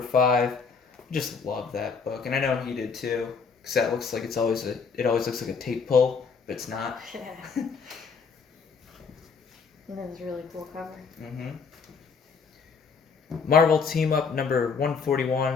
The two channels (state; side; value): quieter; right; 5.4 dB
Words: Just love that book, and I know he did too. Because that looks like it always looks like a tape pull, but it's not. Yeah. That was a really cool cover. Marvel Team Up number